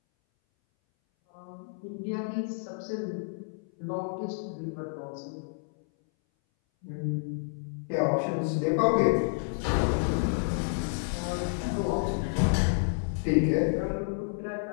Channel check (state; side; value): silent; right; 58 dB below the other